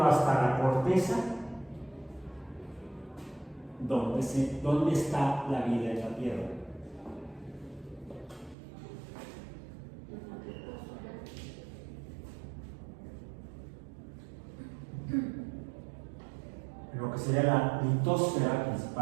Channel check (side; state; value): left; drops out; at 8.6 s